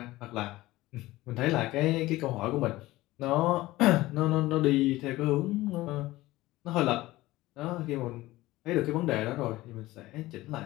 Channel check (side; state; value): right; quieter; 17.9 dB